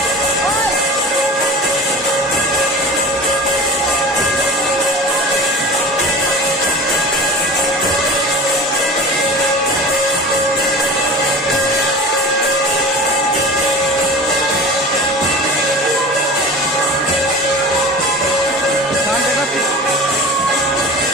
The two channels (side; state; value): both; normal; correlation 0.36